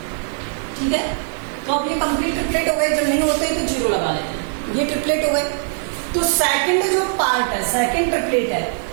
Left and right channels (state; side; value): silent; left; digital silence